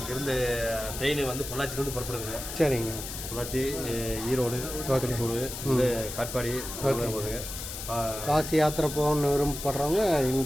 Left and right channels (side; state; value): left; noise; hiss, 8 dB below the sound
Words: இருந்து ட்ரெயின் வந்து பொள்ளாச்சிலேருந்து புறப்படுதுங்க. சரிங்க. பொள்ளாச்சி, ஈரோடு, திருப்பூர், காட்பாடி போகுதுங்க. காசி யாத்திரை போகணுன்னு விரும்பப்படுறவங்க